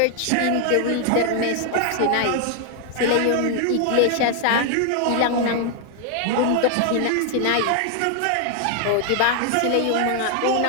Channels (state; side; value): different; both; correlation 0.00